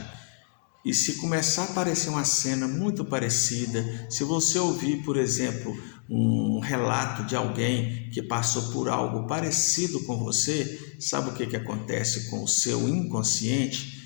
e se começar a aparecer uma cena muito parecida, se você ouvir, por exemplo, um relato de alguém que passou por algo parecido com você, sabe o que acontece com o seu inconsciente?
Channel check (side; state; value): right; silent; digital silence